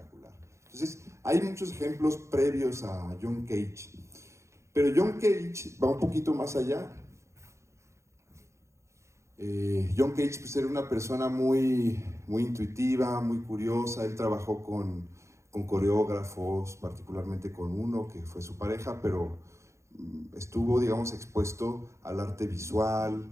Entonces, hay muchos ejemplos previos a John Cage, pero John Cage va un poquito más allá. John Cage pues, era una persona muy intuitiva, muy curiosa. Él trabajó con coreógrafos, particularmente con uno que fue su pareja, pero estuvo, digamos, expuesto al arte visual,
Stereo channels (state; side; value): late; left; 0.14 ms